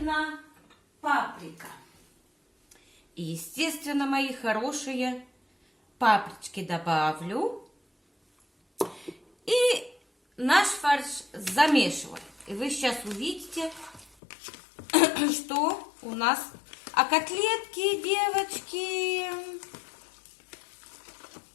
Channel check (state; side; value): drops out; right; at 14.1 s